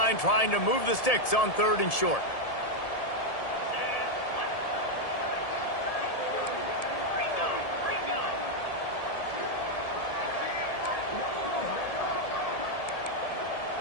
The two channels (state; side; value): late; right; 1.7 ms